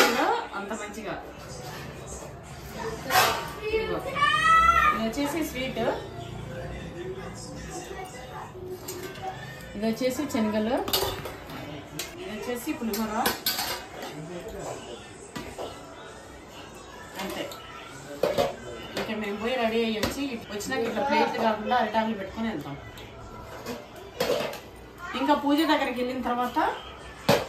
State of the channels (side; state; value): both; identical; correlation 1.00